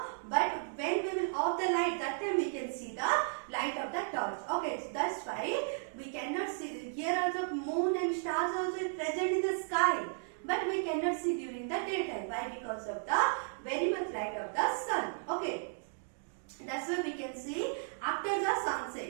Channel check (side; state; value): left; silent; digital silence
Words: but when we will off the light, that time we can see the light of the torch. Okay, so that's why we cannot see. Here also moon and stars also is present in the sky, but we cannot see during the daytime. Why? Because of the very much light of the sun. Okay. That's why we can see after the